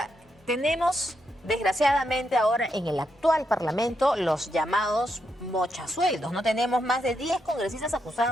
tenemos desgraciadamente ahora en el actual Parlamento los llamados mochasueldos. No tenemos más de 10 congresistas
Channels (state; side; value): normal; both; correlation 0.81